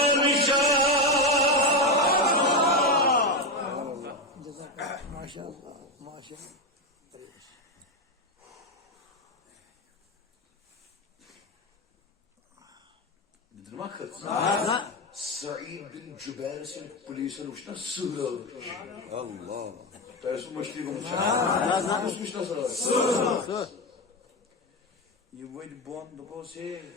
Maşallah. Maşallah. Nedir makıt? Sa'id bin Cübeyr sen polisin uçtan sığır. Allah. Dersin başlığı bulmuş. Nasılmış nasıl? Sığır. Yuvaydı bondu bu şey.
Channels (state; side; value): normal; both; correlation 0.12